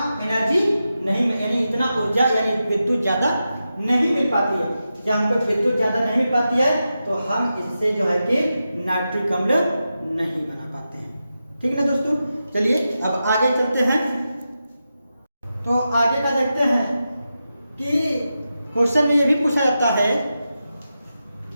एनर्जी नहीं, यानी इतना ऊर्जा यानी विद्युत ज्यादा नहीं मिल पाती है। जब हमको विद्युत ज्यादा नहीं मिल पाती है तो हम इससे जो है कि नाइट्रिक अम्ल नहीं बना पाते हैं। ठीक है ना दोस्तों, चलिए अब आगे चलते हैं। तो आगे का देखते हैं कि क्वेश्चन में यह भी पूछा जाता है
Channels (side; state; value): both; inverted; correlation -0.90